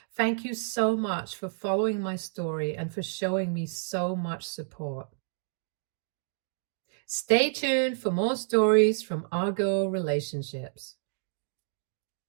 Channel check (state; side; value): silent; left; digital silence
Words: Thank you so much for following my story and for showing me so much support. Stay tuned for more stories from Argo Relationships.